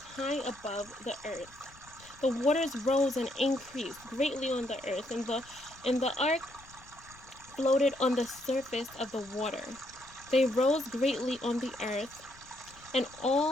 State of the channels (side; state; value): left; noise; rumble, 24 dB below the sound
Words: high above the earth. The waters rose and increased greatly on the earth, and the ark floated on the surface of the water. They rose greatly on the earth, and